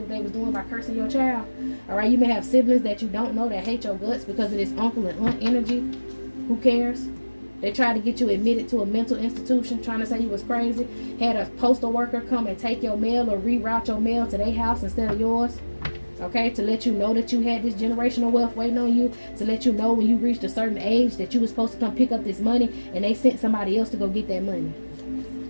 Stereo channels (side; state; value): both; inverted; correlation -1.00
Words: what they was doing by cursing your child? Alright, you may have siblings that you don't know that hate your guts because of this uncle and aunt energy. Who cares? They tried to get you admitted to a mental institution, trying to say you was crazy. Had a postal worker come and take your mail or reroute your mail to their house instead of yours. Okay, to let you know that you had this generational wealth waiting on you, to let you know when you reached a certain age that you were supposed to come pick up this money, and they sent somebody else to go get that money.